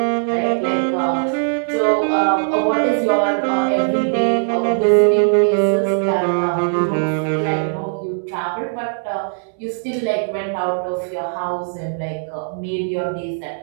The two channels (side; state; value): left; silent; digital silence